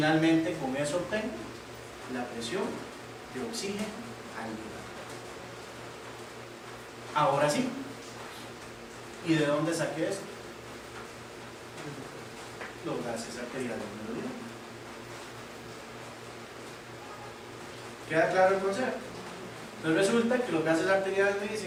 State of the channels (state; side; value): identical; both; correlation 1.00